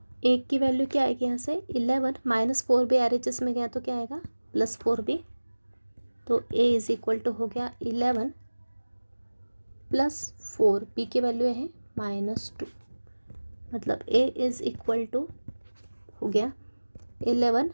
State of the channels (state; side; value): inverted; both; correlation -1.00